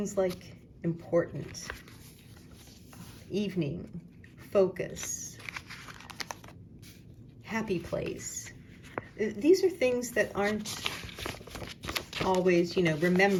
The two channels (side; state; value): both; identical; correlation 1.00